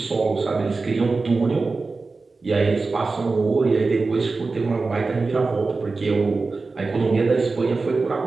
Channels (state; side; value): quieter; left; 3.9 dB